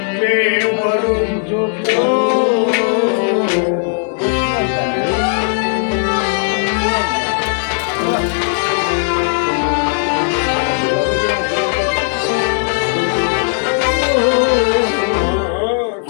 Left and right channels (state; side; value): silent; right; digital silence